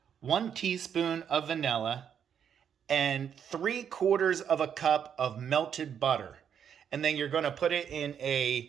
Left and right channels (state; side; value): quieter; left; 8.2 dB